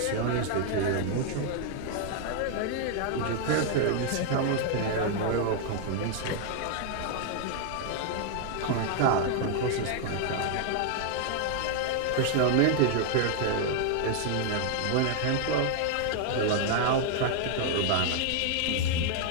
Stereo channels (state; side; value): different; both; correlation 0.00